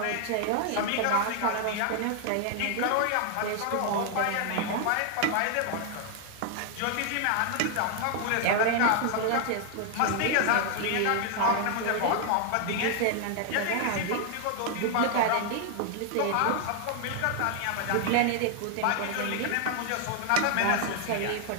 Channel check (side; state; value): both; different; correlation 0.00